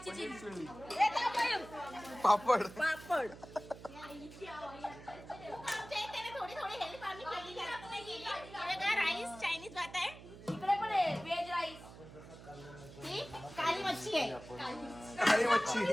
चिल्ली, पापड. थोडी हेल्प आम्ही केली. राईस चायनीज भात आहे, इकडे पण आहे व्हेज राईस. ही काली मच्छी आहे, काली मच्छी.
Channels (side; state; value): right; noise; hum, 16 dB below the sound